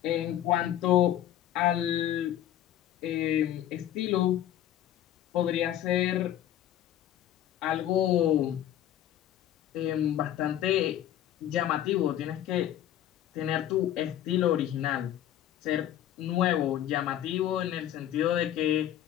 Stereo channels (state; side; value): quieter; right; 11.8 dB